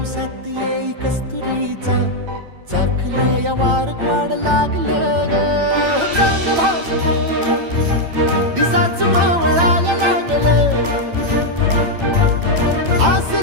साथ येई कस्तुरीचा चाखलं या वार वाड लागलं ग चांग भासलं दिसाच मावळायला लागलं आस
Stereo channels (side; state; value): left; late; 8.9 ms